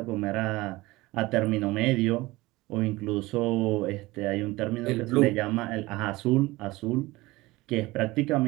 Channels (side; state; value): left; quieter; 20.2 dB